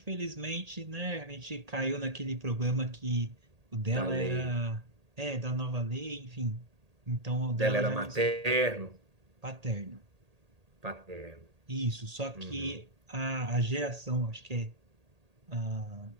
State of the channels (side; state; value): left; late; 1.8 ms